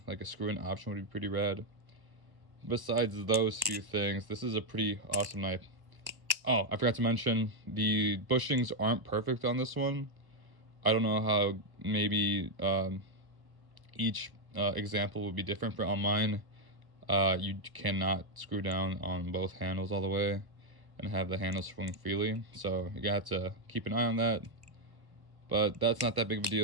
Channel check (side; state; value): left; late; 1.1 ms